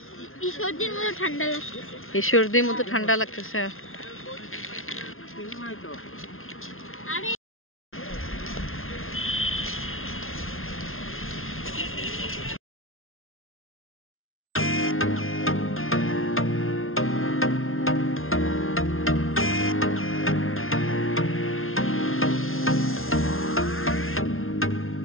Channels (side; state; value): right; late; 0.61 ms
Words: ঈশ্বরদীর মতো ঠান্ডা লাগতেছে।